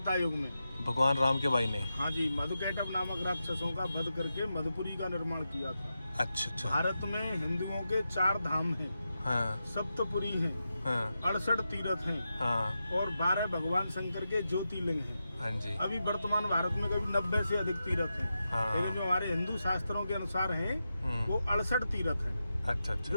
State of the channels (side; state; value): both; inverted; correlation -0.89